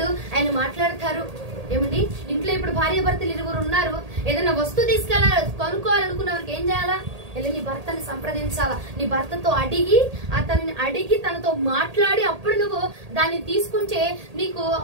ఆయన మాట్లాడతారు. ఏమండి, ఇంట్లో ఇప్పుడు భార్య భర్తలు 2 ఉన్నారు, ఏదైనా వస్తువు కొనుక్కోవాలనుకున్న వారికి ఏం చేయాలా? వెళ్ళి నీ భర్తని సంప్రదించాలా, నీ భర్తతో అడిగి తనతో మాట్లాడి అప్పుడు నువ్వు దాన్ని తీసుకుంటే నీకు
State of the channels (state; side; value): late; left; 1.8 ms